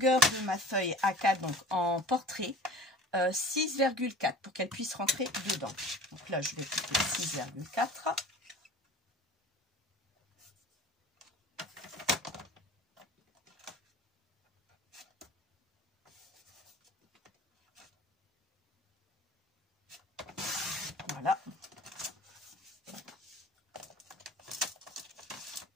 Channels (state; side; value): normal; both; correlation 0.42